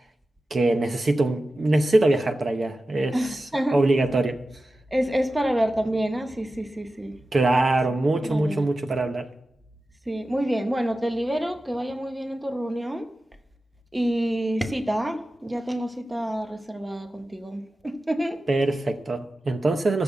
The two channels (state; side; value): normal; both; correlation 0.94